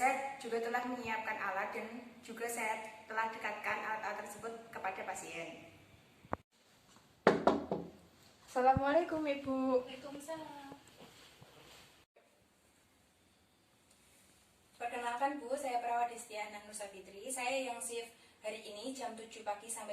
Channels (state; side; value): identical; both; correlation 1.00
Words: juga telah menyiapkan alat dan juga saya telah dekatkan alat-alat tersebut kepada pasien. Assalamualaikum Ibu. Waalaikumsalam. Perkenalkan Bu, saya Perawat Destiana Nur Safitri. Saya yang shift hari ini jam 7 pagi